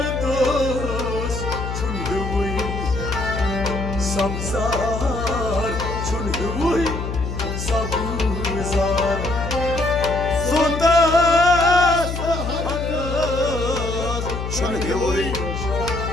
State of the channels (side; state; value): left; noise; hum, 5 dB below the sound